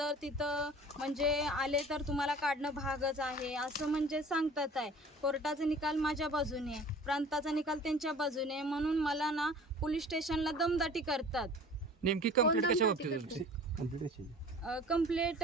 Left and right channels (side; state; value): both; normal; correlation 0.44